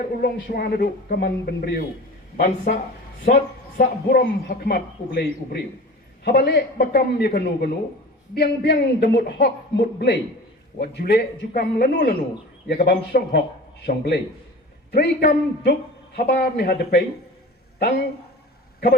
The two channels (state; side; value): normal; both; correlation 0.37